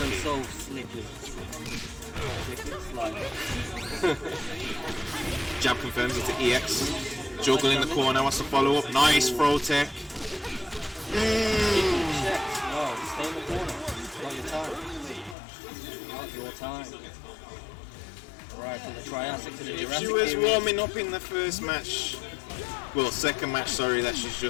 so slippery. Jab confirms into EX. Juggle in the corner, wants to follow up. Nice throw tech. No, stay in the corner. Not your time. Not your time. Right, from the Triassic to the Jurassic. If she was warming up in the first match, well, second match, sorry, that she's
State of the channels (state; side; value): drops out; right; at 15.4 s